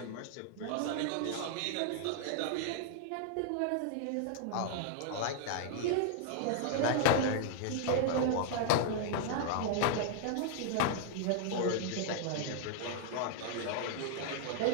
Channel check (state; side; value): different; both; correlation -0.01